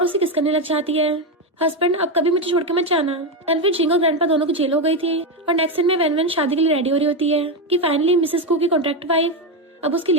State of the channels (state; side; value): normal; both; correlation 0.10